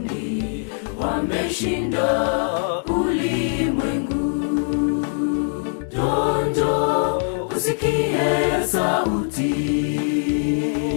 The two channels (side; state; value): right; silent; 63 dB below the other